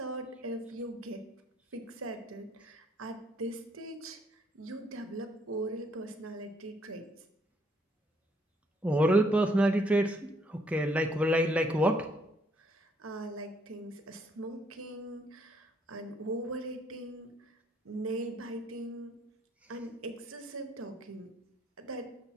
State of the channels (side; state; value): both; normal; correlation 0.69